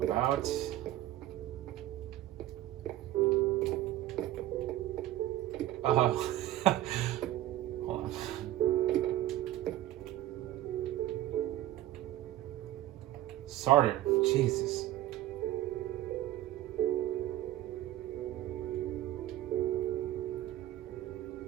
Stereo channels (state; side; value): quieter; left; 14.3 dB